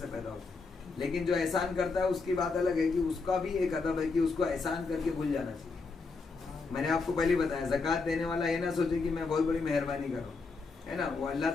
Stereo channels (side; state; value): right; quieter; 4.2 dB